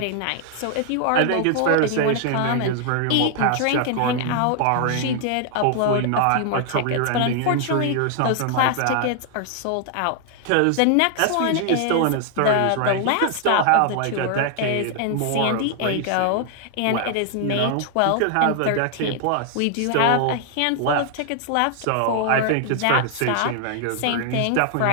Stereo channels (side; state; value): both; different; correlation 0.00